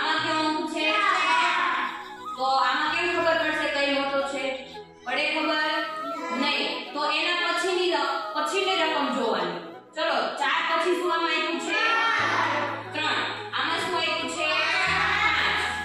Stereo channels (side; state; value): both; identical; correlation 1.00